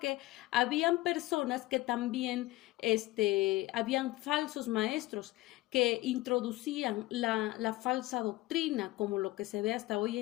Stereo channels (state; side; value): quieter; right; 18.8 dB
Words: habían personas que también habían falsos maestros que introducían la falsa doctrina, como lo que se ve hasta hoy